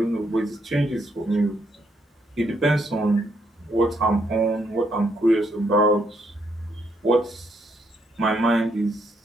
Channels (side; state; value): both; normal; correlation 0.74